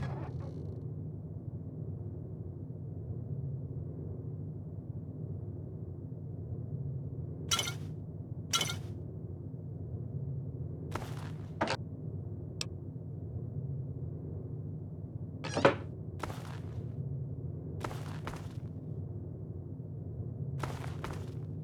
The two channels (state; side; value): identical; both; correlation 1.00